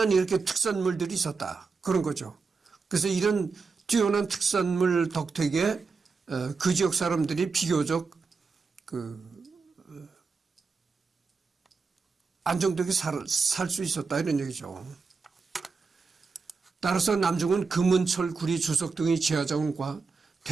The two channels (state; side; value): quieter; left; 4.7 dB